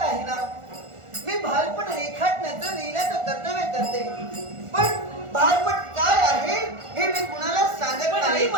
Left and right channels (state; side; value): late; left; 1.4 ms